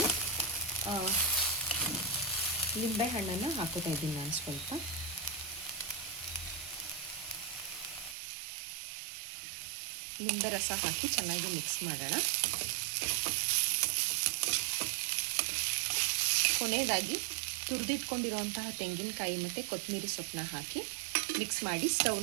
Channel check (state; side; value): drops out; left; at 8.2 s